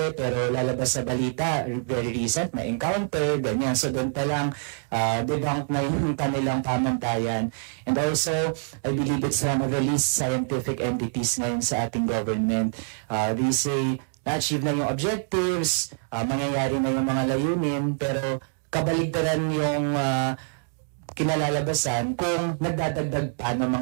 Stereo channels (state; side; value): silent; left; digital silence